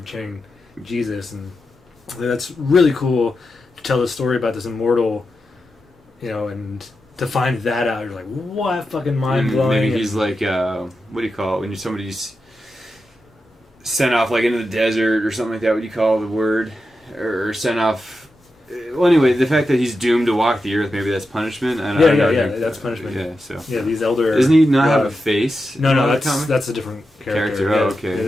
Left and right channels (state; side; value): normal; both; correlation 0.89